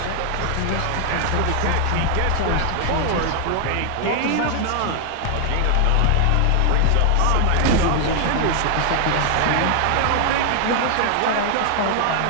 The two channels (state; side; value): different; both; correlation 0.00